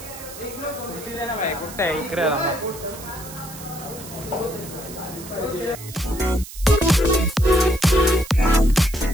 खुर्ची दे ना भाई, कुठं आहे इकडे.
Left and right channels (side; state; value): right; noise; hiss, 14 dB below the sound